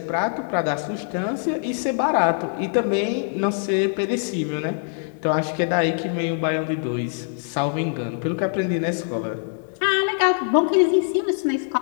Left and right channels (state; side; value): silent; right; 63 dB below the other